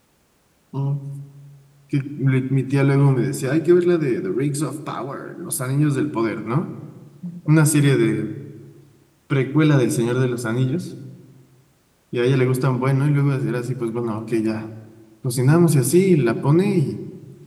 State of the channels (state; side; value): identical; both; correlation 1.00